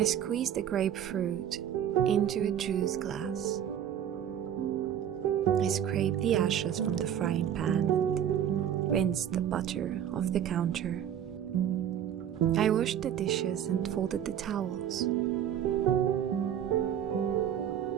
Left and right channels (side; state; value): left; quieter; 9.7 dB